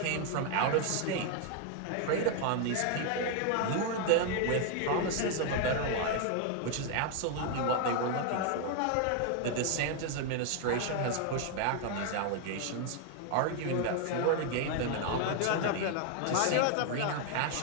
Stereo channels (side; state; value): both; different; correlation 0.00